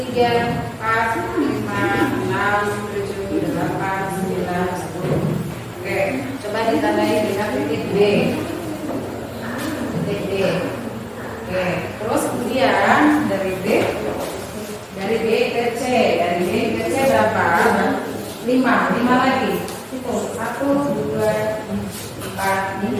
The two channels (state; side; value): identical; both; correlation 1.00